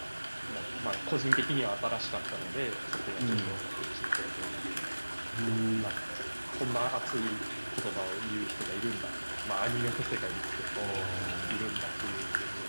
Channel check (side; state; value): both; inverted; correlation -1.00